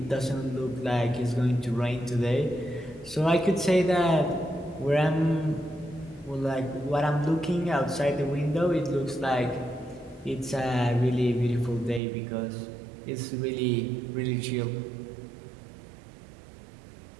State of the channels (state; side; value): drops out; left; at 12.0 s